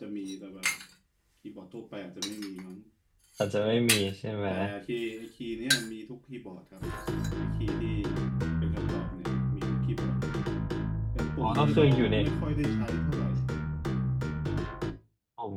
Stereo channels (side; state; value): both; identical; correlation 1.00